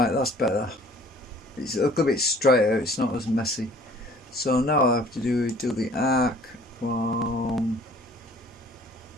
that's better. It's a little bit straighter, it's not as messy. So now all I have to do is do the arc from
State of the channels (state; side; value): normal; both; correlation 0.53